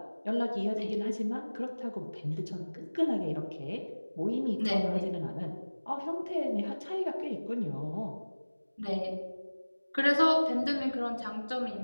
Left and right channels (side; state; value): both; inverted; correlation -1.00